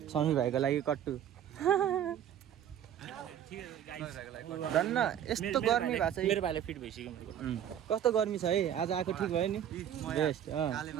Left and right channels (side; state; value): left; quieter; 10.0 dB